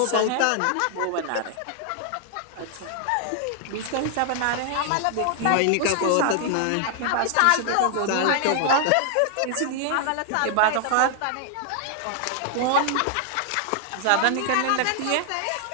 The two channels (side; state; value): both; different; correlation 0.00